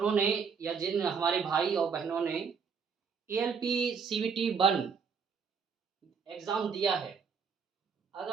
ने या जिन हमारे भाई और बहनों ने एएलपी सीबीटी 1 एग्ज़ाम दिया है,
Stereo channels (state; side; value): quieter; left; 6.0 dB